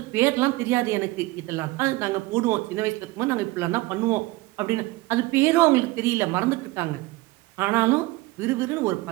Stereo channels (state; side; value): quieter; left; 20.6 dB